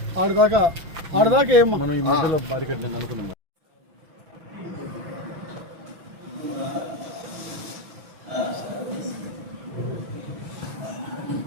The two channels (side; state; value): left; late; 6.0 ms